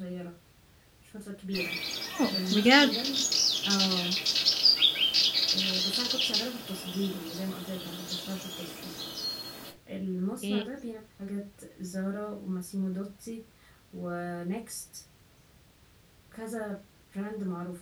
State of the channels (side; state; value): both; identical; correlation 1.00